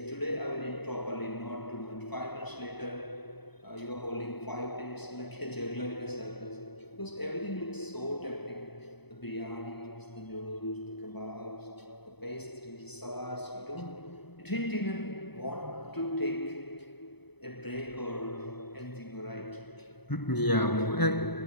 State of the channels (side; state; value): right; late; 0.98 ms